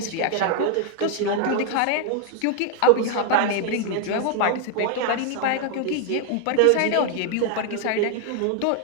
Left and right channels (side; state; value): both; different; correlation 0.00